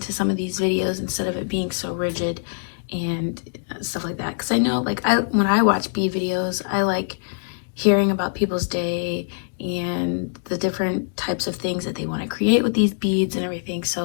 some of these videos instead of it being so rigid and stuff like that. Because I know, like, when I watch bead videos, I like hearing about people's day and the different types of things that they want to create with these beads and everything.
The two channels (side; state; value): right; silent; digital silence